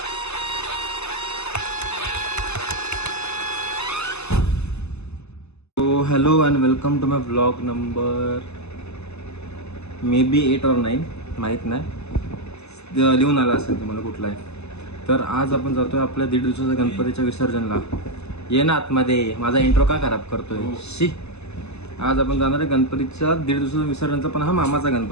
hello and welcome to my blog number maybe 8 or 9 माहीत नाही, लिहून आला असेल तुम्हाला कुठला आहे. तर आज आपण जातोय आपल्या 1.5 दिवसाच्या गणपतीच्या विसर्जनला. ये ना आतमध्ये, माझा इंट्रो का खराब करतोय शी. आज आपण जाणार आहे गणपतीच्या 1.5 दिवसाच्या विसर्जनचा. पण हा मामाचा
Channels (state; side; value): late; right; 0.80 ms